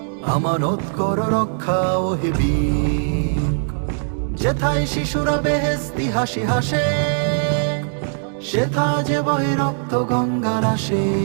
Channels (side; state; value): left; silent; digital silence